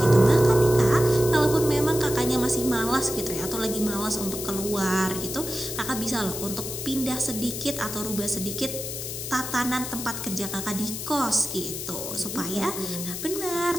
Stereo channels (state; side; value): noise; left; hiss, 6 dB below the sound